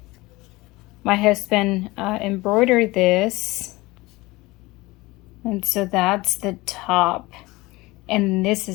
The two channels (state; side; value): quieter; right; 21.2 dB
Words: My husband embroidered this, and so that's the top, and this